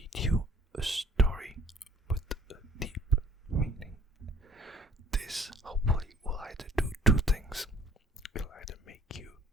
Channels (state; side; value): normal; both; correlation 0.54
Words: you a story with a deep meaning. This hopefully will either do two things. It'll either make you